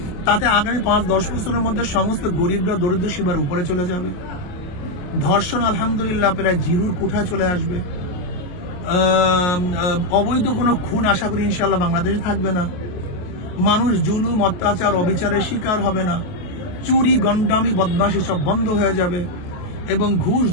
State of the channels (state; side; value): late; right; 28 ms